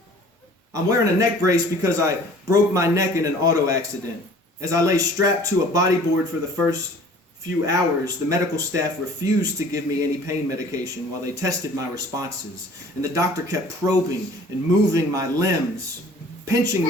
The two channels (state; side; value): normal; both; correlation 0.50